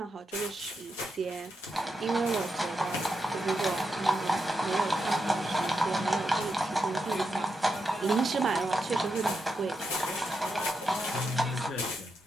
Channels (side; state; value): both; normal; correlation 0.85